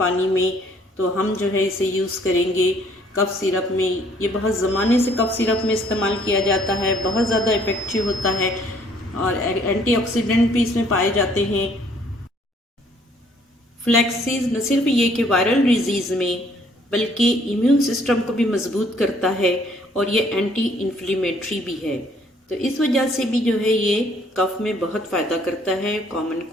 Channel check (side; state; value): both; normal; correlation 0.62